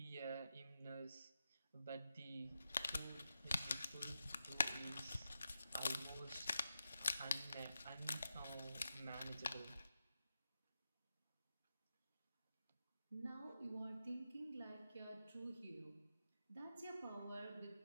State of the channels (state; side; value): inverted; both; correlation -0.89